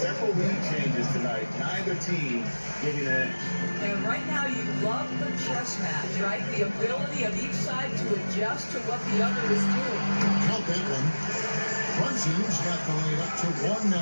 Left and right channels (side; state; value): both; inverted; correlation -1.00